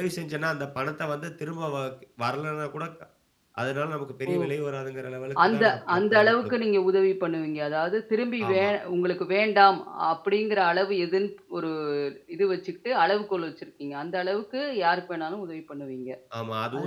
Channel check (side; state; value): both; identical; correlation 1.00